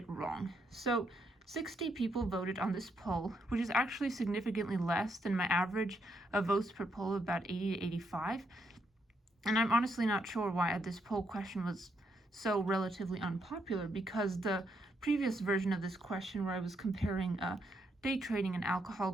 wrong. So 60 people voted on this poll, which is actually significantly less than my average of votes per poll of about 80 to 85. And I'm honestly not sure why this poll question was so relatively unpopular, because the previous version of this question where I was comparing day trading and alcohol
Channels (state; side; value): normal; both; correlation 0.77